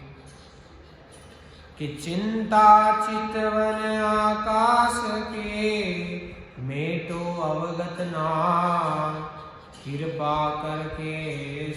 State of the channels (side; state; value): both; identical; correlation 1.00